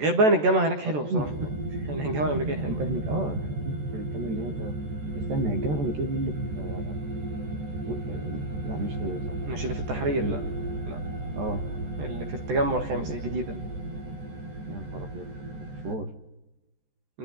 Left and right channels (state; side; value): late; left; 14 ms